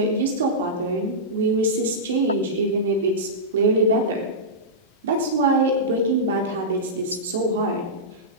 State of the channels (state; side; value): normal; both; correlation -0.14